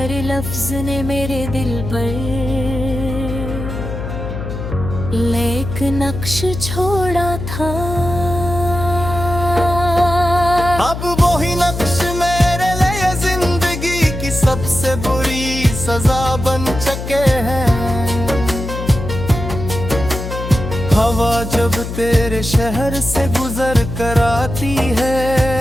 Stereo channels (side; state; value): left; noise; hum, 7 dB below the sound